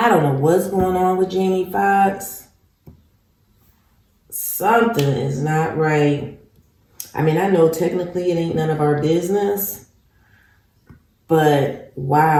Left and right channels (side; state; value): both; identical; correlation 1.00